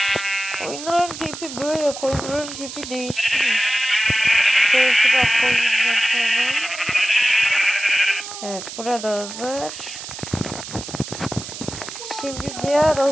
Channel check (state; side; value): noise; right; hiss, 10 dB below the sound